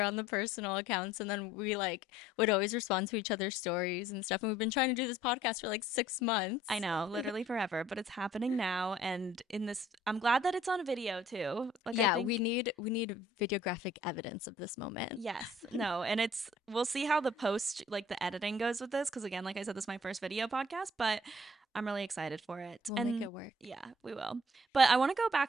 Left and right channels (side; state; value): both; normal; correlation 0.57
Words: on the personal accounts. And then we like would always respond to each other's stories and stuff. And we've been trying to do this podcast for like 6 months. I know, literally forever, but it's happening now. And in this, I'm glad that it's on video too. Like I Yeah, think we need videographic evidence of this moment. yes, no, and we'll see how the post, like the editing goes with this, because again, like I said, this is my first video podcast, but I'm really excited for it. We'll make And it work. yeah, we will. But I want to go